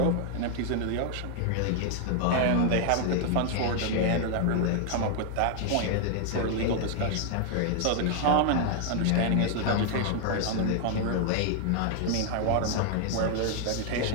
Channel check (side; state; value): both; different; correlation 0.00